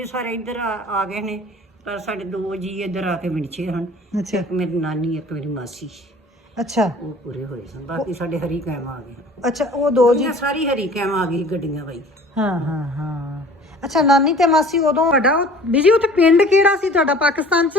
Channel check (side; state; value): both; normal; correlation 0.47